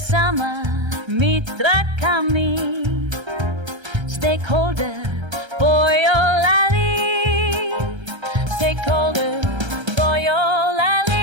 mitra kami stakeholder Boyolali, stakeholder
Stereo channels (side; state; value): left; late; 1.3 ms